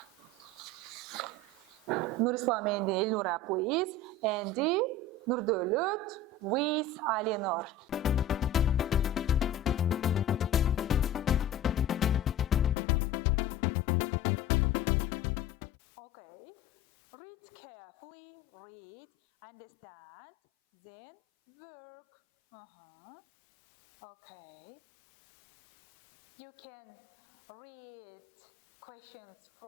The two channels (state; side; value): drops out; right; at 12.8 s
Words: Nurislam and Elnura, please. And Nurdolut with Alinor. Okay. Read carefully, read, understand, then work. Okay. You can read questions